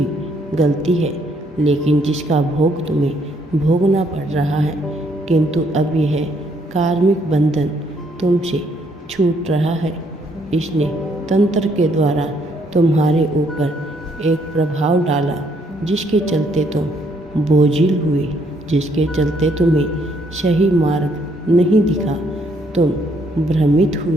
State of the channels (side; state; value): both; normal; correlation 0.70